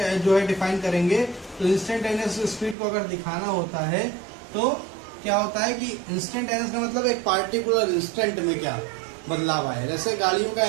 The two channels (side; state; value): left; drops out; at 2.8 s